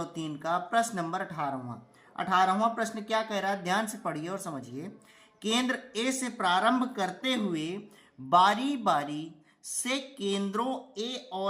का प्रश्न नंबर 18वां प्रश्न क्या कह रहा है, ध्यान से पढ़िए और समझिए। केंद्र ए से प्रारंभ करते हुए बारी बारी से केंद्रों ए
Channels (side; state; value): both; identical; correlation 1.00